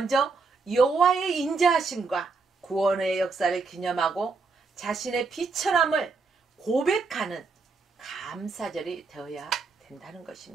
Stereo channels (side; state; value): left; quieter; 4.3 dB